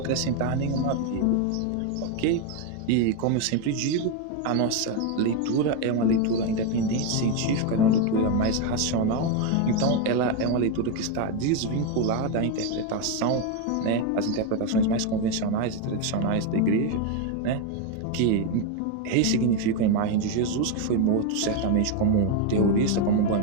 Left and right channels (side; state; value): both; different; correlation 0.02